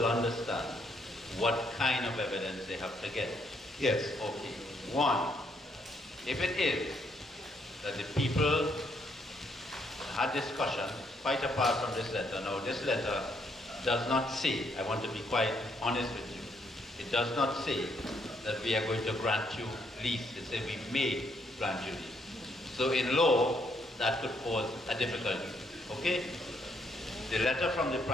understand what kind of evidence they have to get. Yes. Okay. One, if it is that the people had discussion, quite apart from this letter. Now, this letter does not say, I want to be quite honest with you, it does not say that we are going to grant you lease. It says we may grant you lease. So in law, that could cause a difficulty. Okay? The letter from the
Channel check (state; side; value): normal; both; correlation 0.73